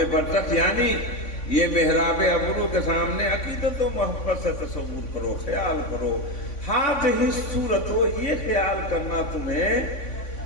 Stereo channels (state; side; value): late; right; 3.5 ms